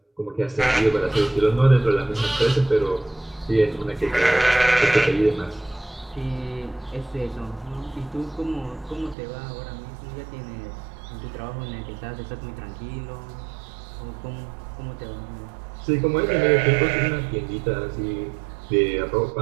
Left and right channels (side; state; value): left; drops out; at 9.2 s